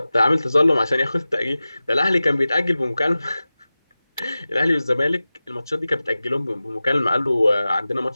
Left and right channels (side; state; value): both; inverted; correlation -0.96